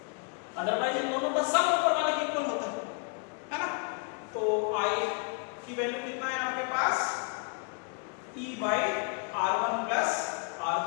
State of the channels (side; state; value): right; quieter; 38.3 dB